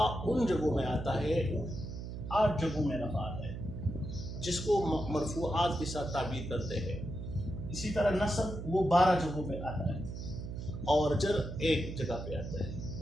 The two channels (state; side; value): noise; right; hum, 7 dB below the sound